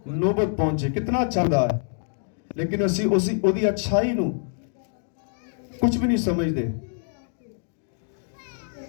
نوبت پہنچے۔ کتنا چاہتا ہے، لیکن اسی اچھائی نو کچھ بھی نہیں سمجھ دے۔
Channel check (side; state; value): right; silent; digital silence